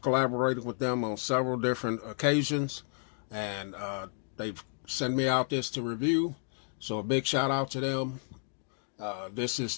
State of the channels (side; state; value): right; silent; digital silence